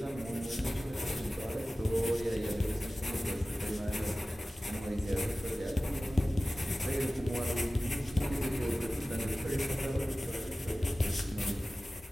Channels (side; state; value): both; normal; correlation 0.97